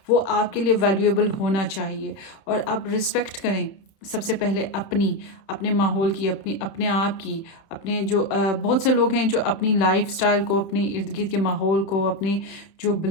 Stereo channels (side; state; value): right; late; 30 ms